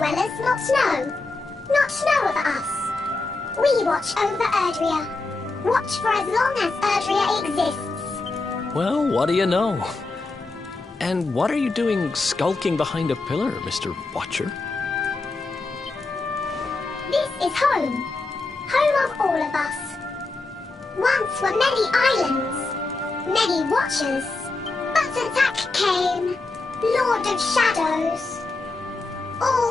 not snow. Not snow of us. We watch over Erdrea. Watch for as long as Erdrea exists. Well, what do you know? And what are you doing skulking behind a pillar, Mr. Watcher? This is home. Home of all of us. Once were many islands, many Watchers. But attack came, Lord of Shadows. All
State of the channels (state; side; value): quieter; right; 3.4 dB